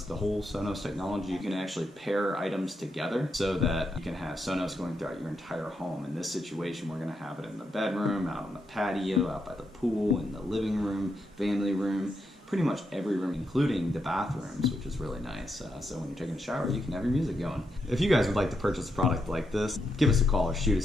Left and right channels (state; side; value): normal; both; correlation 0.82